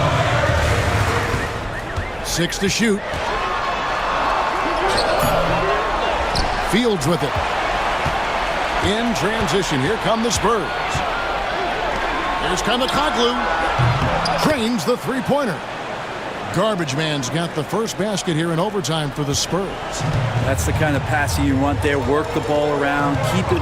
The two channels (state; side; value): identical; both; correlation 1.00